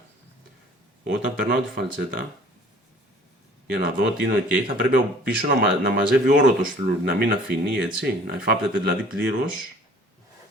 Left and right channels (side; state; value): both; normal; correlation 0.52